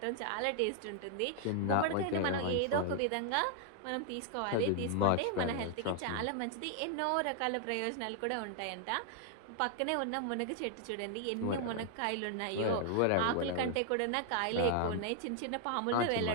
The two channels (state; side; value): different; both; correlation 0.00